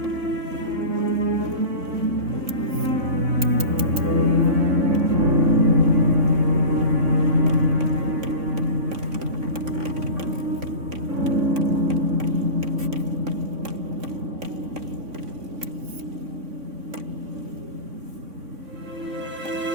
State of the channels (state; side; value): late; left; 3.6 ms